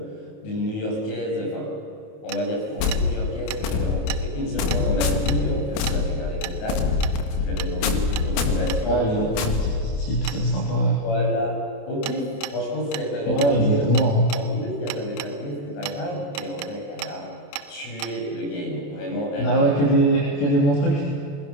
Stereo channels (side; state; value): right; late; 29 ms